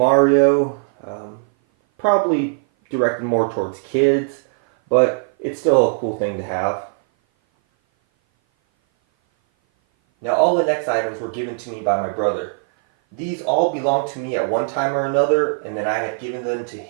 probably directed more towards kids, but it's still a cool thing to have. Now all the next items were given to me by my brother. These all belonged to me at one time or another, and then I had given them to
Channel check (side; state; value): left; silent; 57 dB below the other